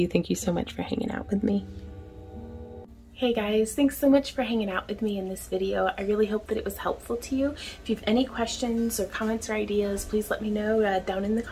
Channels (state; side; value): identical; both; correlation 1.00